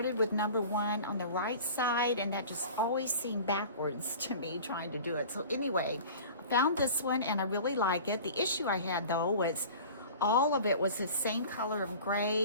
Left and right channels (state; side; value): inverted; both; correlation -0.40